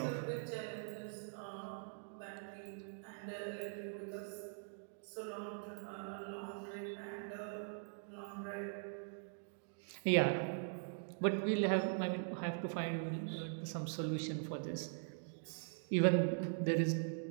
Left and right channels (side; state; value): left; silent; digital silence